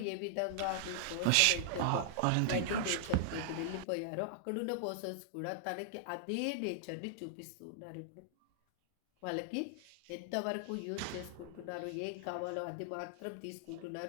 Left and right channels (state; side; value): different; both; correlation -0.01